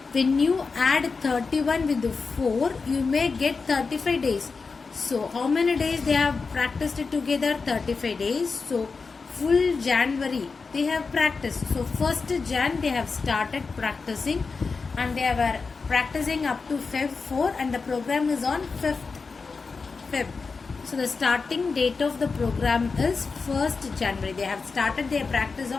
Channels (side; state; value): right; quieter; 4.6 dB